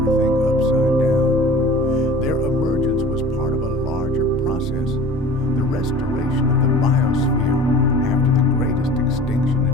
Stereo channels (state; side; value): normal; both; correlation 0.42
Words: upside down. Their emergence was part of a larger process, the restoration of the biosphere after the greatest extinction